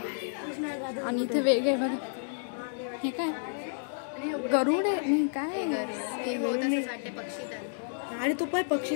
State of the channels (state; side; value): silent; right; digital silence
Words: आणि इथे वेग आहे बघा। हे काय गरुड आहे? नाही काय आणि तो पण पक्षी